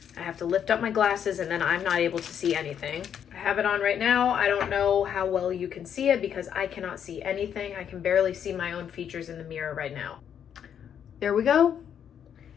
I have to lift up my glasses and then I'm not able to see anything. I have it on right now. I don't know how well you can see it because I cannot see anything. I can barely see my own features in the mirror right now. There we go.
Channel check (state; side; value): quieter; right; 8.7 dB